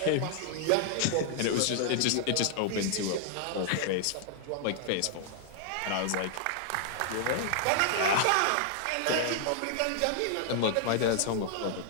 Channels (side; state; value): both; different; correlation -0.01